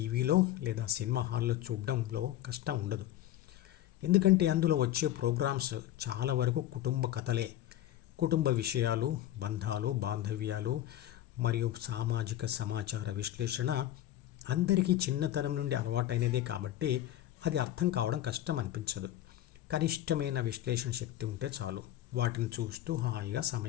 లేదా సినిమా హాల్లో చూడడంలో కష్టం ఉండదు. ఎందుకంటే అందులో వచ్చే ప్రోగ్రామ్స్ చాలా వరకు కుటుంబ కథలే. కుటుంబ విషయాలు, బంధాలు, బాంధవ్యాలు మరియు సామాజిక సమాచార విశ్లేషణ అందరికీ చిన్నతనం నుండి అలవాటైనదే కాబట్టి అది అర్థం కావడం కష్టం అనిపించదు. కనిష్టమైన విశ్లేషణ శక్తి ఉంటే చాలు, వాటిని చూస్తూ హాయిగా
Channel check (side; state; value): right; quieter; 13.1 dB